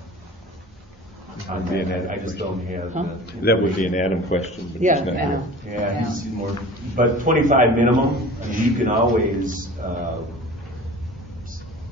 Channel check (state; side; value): normal; both; correlation 0.40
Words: on that. I just don't have. Huh? That would be an Adam question, but he's Yeah, not I here. know. Yeah, he's more. But 25 minimum. I mean, you can always